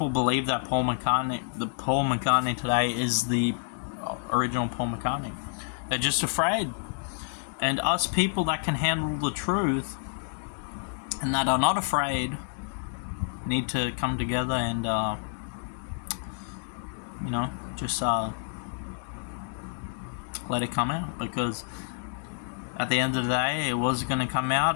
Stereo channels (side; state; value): right; silent; digital silence